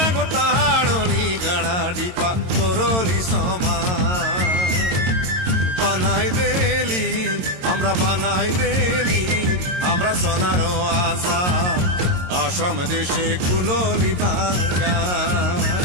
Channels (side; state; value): left; late; 22 ms